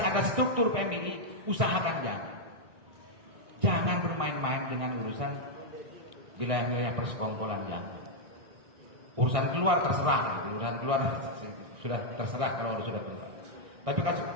ada struktur PMI, usahakan jangan. Jangan bermain-main dengan urusan wilayah-wilayah persekongkolan, jangan. Urusan keluar terserah, urusan keluar sudah terserah kalau sudah keluar. Tapi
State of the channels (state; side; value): late; left; 1.6 ms